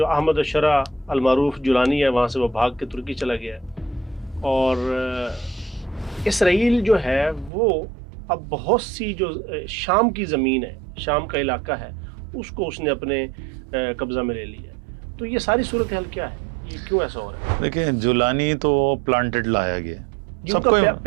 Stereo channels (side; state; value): left; drops out; at 7.5 s